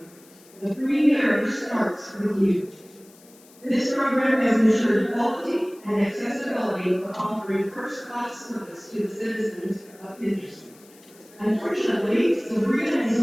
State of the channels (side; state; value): left; noise; hiss, 26 dB below the sound